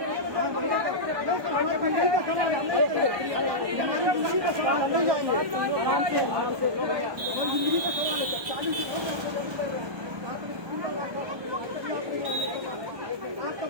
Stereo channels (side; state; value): left; late; 1.2 ms